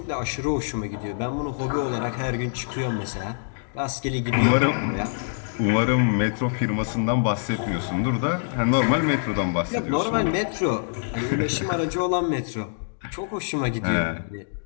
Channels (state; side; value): silent; right; digital silence